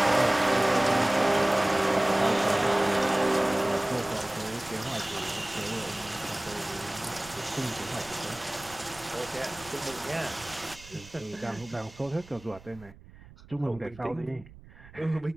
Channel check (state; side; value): noise; right; rumble, 21 dB below the sound